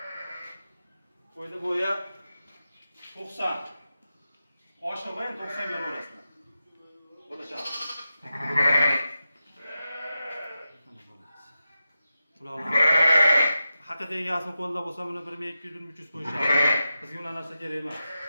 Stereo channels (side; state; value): both; inverted; correlation -0.91